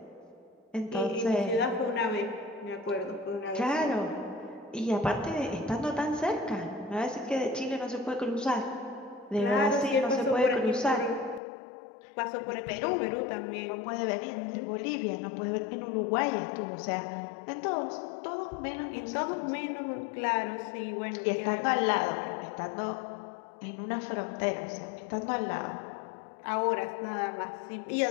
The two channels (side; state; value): right; drops out; at 11.4 s